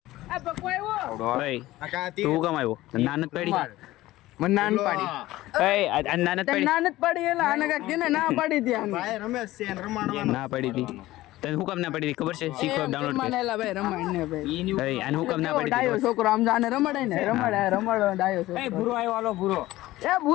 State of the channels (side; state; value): right; quieter; 16.9 dB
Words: તું કેમ આવ્યો? નાનત પડી મને નાન પાડી નાનત પડી નાનત પાડી એલા આને કાક કેને ના પાડી દી આને ભાઈ રમેશ છે રમાડવાનો ના પડી હતી. તને હું કામ ના પડી હતી ખબર છે? શીખો ડાઉનલોડ કર. માનેલા ભાઈ રમાડ ને ભાઈ આને હું કામ ના પડી ડાયો હતી? છોકરો આમ જાને રમાડે ને રમાડો ડાયો છોકરો. ભૂરો આવ્યો, હાલો ભૂરો. એ